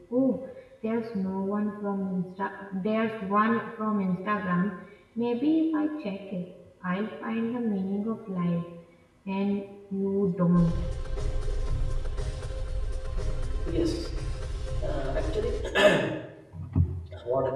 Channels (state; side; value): identical; both; correlation 1.00